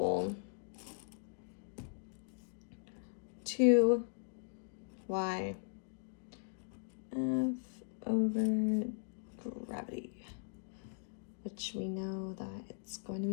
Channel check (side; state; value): right; silent; digital silence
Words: 2y f over gravity, which we know that it's going to